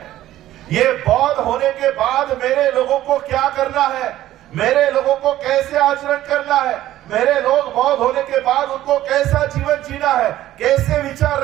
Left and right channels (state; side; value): quieter; left; 14.0 dB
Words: ये बौद्ध होने के बाद मेरे लोगों को क्या करना है, मेरे लोगों को कैसे आचरण करना है, मेरे लोग बौद्ध होने के बाद उनको कैसा जीवन जीना है, कैसे विचार